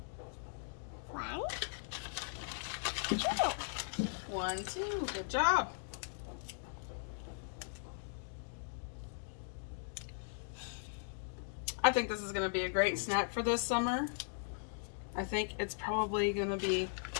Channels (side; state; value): right; silent; digital silence